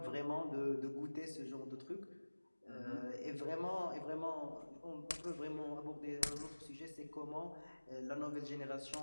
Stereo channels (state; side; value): inverted; both; correlation -1.00